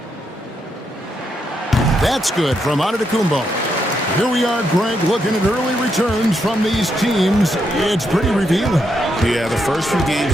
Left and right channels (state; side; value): normal; both; correlation 0.80